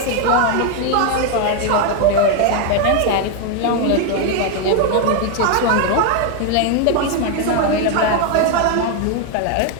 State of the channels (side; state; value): both; different; correlation 0.01